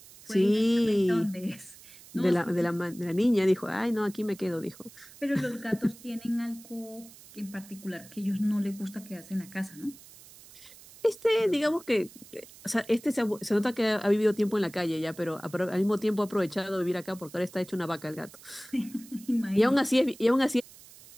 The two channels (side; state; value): right; noise; hiss, 21 dB below the sound